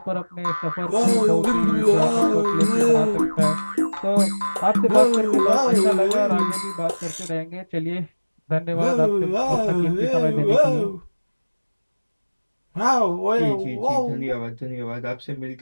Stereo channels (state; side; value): inverted; both; correlation -1.00